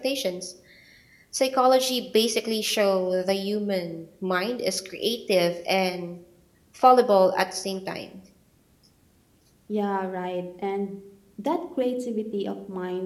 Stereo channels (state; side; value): identical; both; correlation 1.00